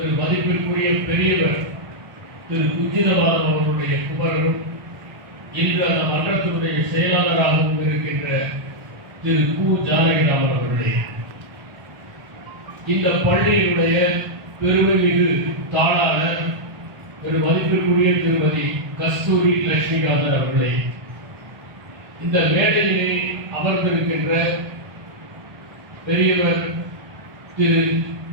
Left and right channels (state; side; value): late; left; 1.5 ms